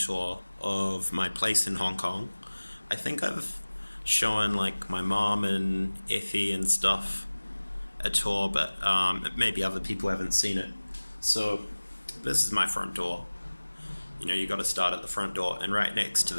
of my place in Hong Kong. I think I've shown like my mom and Effie and stuff a tour, but maybe other people haven't seen it. So, this is my front door. You got to start at the front door, and right next to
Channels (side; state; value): both; inverted; correlation -1.00